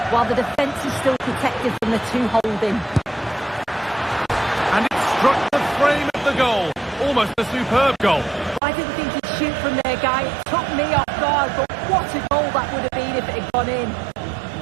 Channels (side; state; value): left; drops out; at 8.6 s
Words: while the defence is still protected from the two holding. And it struck the frame of the goal. Almost a superb goal. I didn't think he'd shoot from there, Guy. It took me off guard, but what a goal that would have been if it had gone in.